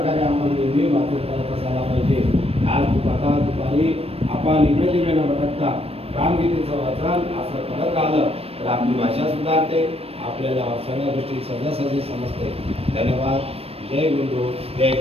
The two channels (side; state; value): left; late; 0.28 ms